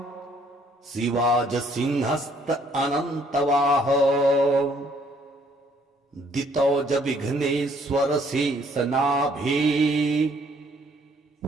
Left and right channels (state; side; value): normal; both; correlation 0.64